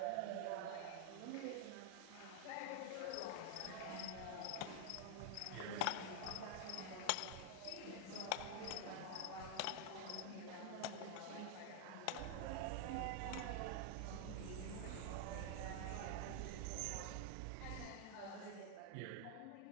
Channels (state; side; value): different; both; correlation 0.00